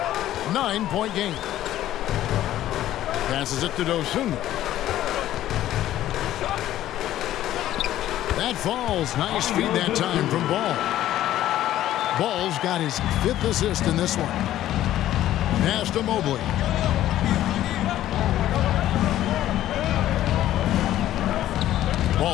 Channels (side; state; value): right; quieter; 13.2 dB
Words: 9-point game. Passes it to Dosunmu. That falls. Nice feed that time from Ball. Ball's got his 5th assist in this one. Pass to Mobley.